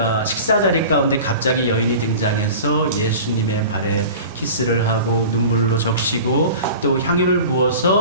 식사 자리 가운데 갑자기 여인이 등장해서 예수님의 발에 키스를 하고 눈물로 적시고 또 향유를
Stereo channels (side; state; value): both; inverted; correlation -0.38